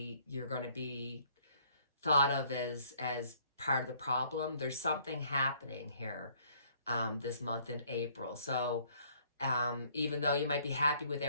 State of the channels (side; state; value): both; inverted; correlation -0.62